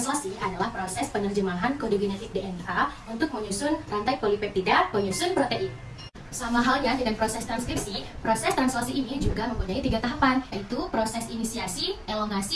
adalah proses penerjemahan kode genetik DNA untuk menyusun rantai polipeptida penyusun protein. Sama halnya dengan proses transkripsi, proses translasi ini juga mempunyai 3 tahapan, yaitu proses inisiasi,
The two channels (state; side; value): identical; both; correlation 1.00